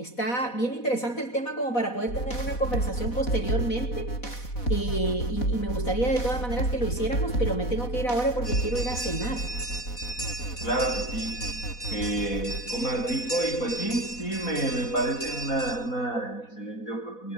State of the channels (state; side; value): late; right; 4.1 ms